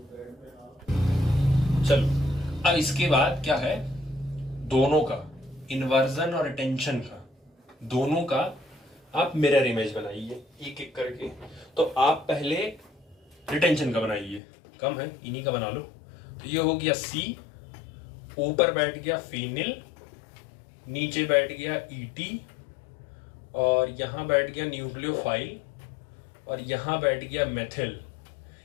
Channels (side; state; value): right; drops out; at 14.4 s